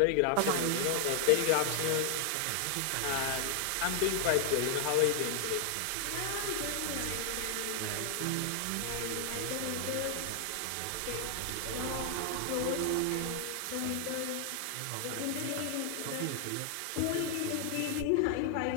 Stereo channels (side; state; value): both; different; correlation 0.00